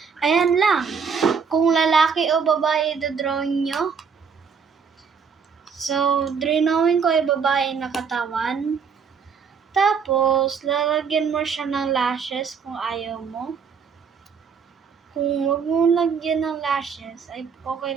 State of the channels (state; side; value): quieter; left; 6.1 dB